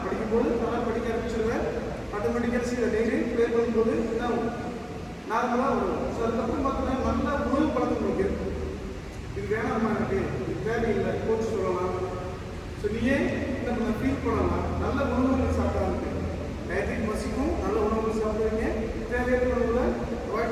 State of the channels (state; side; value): identical; both; correlation 1.00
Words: படிக்கும்போது நல்லா படிக்க ஆரம்பிச்சிருவேன். ஆட்டோமேட்டிக்காக செய்ய டெய்லி ப்ளே பண்ணும்போது என்ன ஆகும், நார்மலாக வரும். ஸோ அதுக்கப்புறம் பார்த்தீங்கன்னா நல்ல உணவு பழக்கம் உங்களுக்கு இருக்கும். இது வேணாமா, எனக்கு இது தேவையில்லை கோச் சொல்லலாம். ஸோ நீயே என்ன பண்ண ஃபீல் பண்ணலாம். நல்ல உணவுகள் சாப்பிட்டா இருக்கு, டயத்துக்கு பசிக்கும், நல்ல உணவுகள் சாப்பிடுவீங்க. தேவையான உணவுகளை